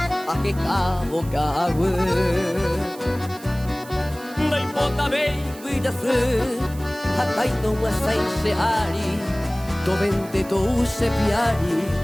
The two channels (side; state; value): right; noise; hiss, 19 dB below the sound